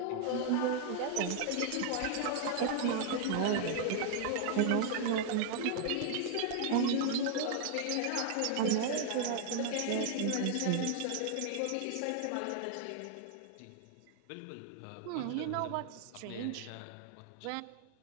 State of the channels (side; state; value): both; different; correlation -0.01